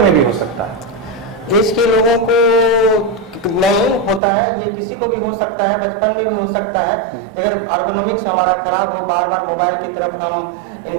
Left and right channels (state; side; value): drops out; left; at 4.2 s